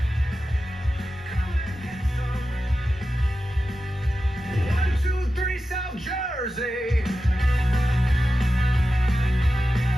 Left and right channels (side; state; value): both; normal; correlation 0.92